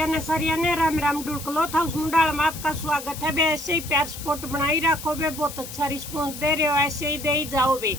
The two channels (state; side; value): noise; left; hiss, 11 dB below the sound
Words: ने सारिया ने राम राम ढुलकलो था उस मुंडाल में आपका स्वागत है बे। ऐसे ही प्यार सपोर्ट बनाई रखो बे, बहुत अच्छा रिस्पॉन्स दे रहे हो, ऐसे ही दे ही जाओ बे।